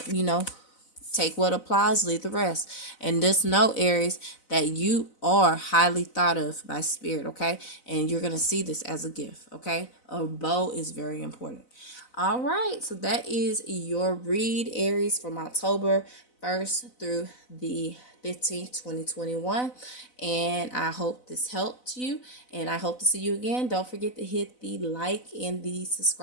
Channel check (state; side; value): late; right; 4.0 ms